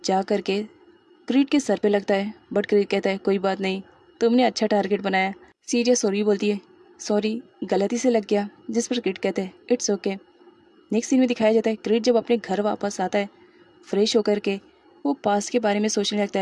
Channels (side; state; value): both; identical; correlation 1.00